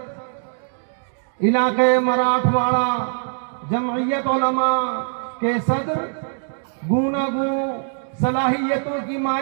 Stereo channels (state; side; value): silent; left; digital silence